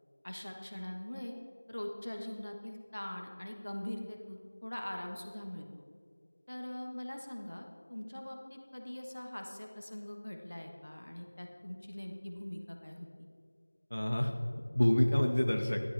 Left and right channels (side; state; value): both; inverted; correlation -1.00